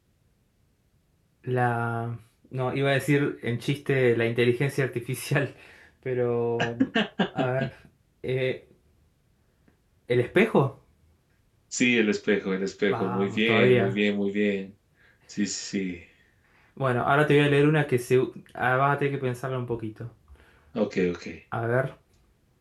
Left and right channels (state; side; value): identical; both; correlation 1.00